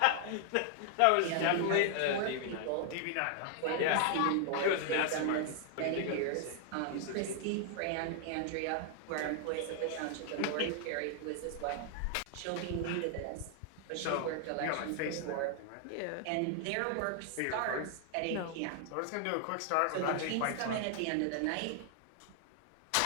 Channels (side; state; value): both; different; correlation 0.00